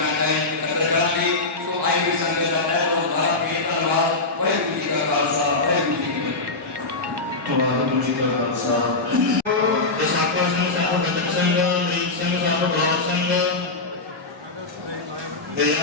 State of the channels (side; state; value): right; quieter; 3.4 dB